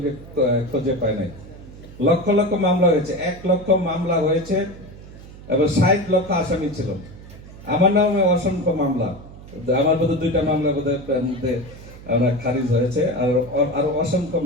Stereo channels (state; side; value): noise; right; hum, 17 dB below the sound